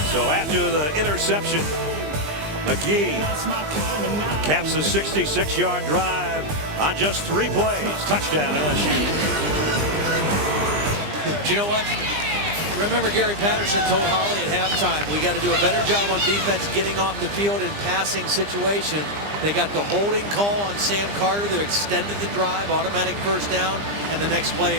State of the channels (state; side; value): late; left; 20 ms